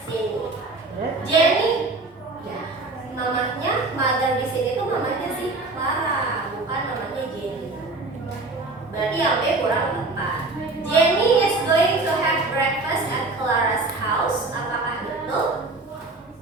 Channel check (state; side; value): quieter; left; 3.3 dB